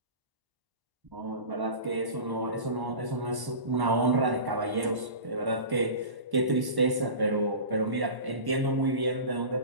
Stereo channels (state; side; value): late; left; 1.1 ms